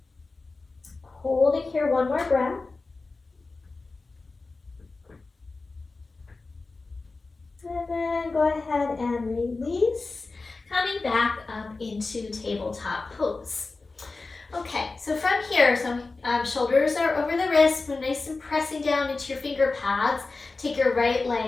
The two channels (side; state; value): right; quieter; 3.7 dB